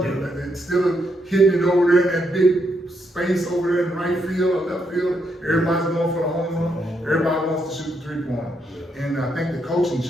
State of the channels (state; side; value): normal; both; correlation 0.78